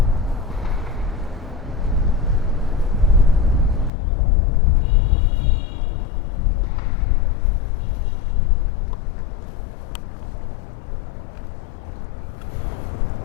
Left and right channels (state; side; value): drops out; right; at 3.9 s